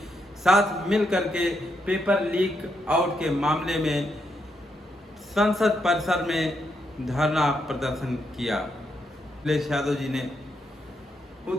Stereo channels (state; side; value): normal; both; correlation 0.79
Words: साथ मिलकर के पेपर लीक आउट के मामले में संसद परिसर में धरना प्रदर्शन किया। अखिलेश यादव जी ने